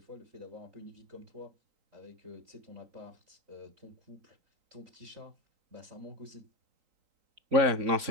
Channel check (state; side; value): late; left; 3.9 ms